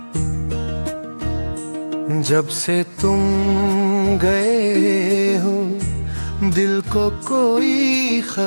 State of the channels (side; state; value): both; inverted; correlation -1.00